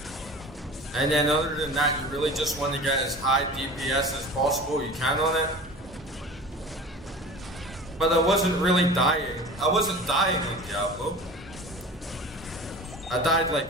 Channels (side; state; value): both; normal; correlation 0.38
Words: And then other than that, you really just want to get as high DPS as possible you can on it. But I wasn't really dying. I wasn't dying on Diablo. I died like